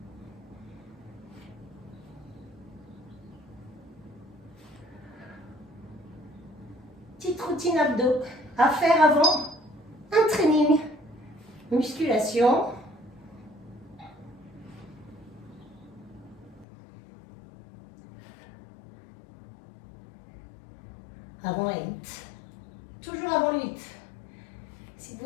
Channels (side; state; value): right; drops out; at 16.7 s